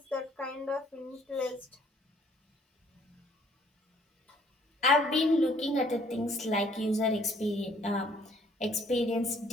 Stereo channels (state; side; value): normal; both; correlation 0.61